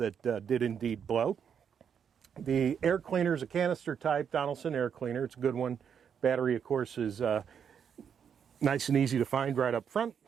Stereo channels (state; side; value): quieter; left; 7.6 dB